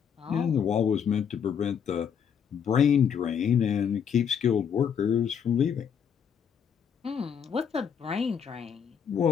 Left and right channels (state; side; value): quieter; right; 7.6 dB